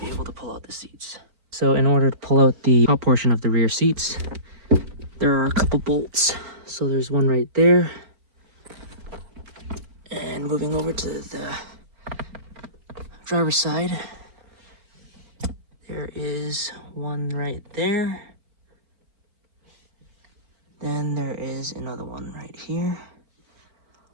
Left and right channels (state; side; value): late; left; 4.3 ms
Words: able to pull out the seats. So in order to pull out the top portion of the rear seats, there are a couple bolts. So there's one right there, and moving over to the driver's side, there is one right there. Then there is another one right here.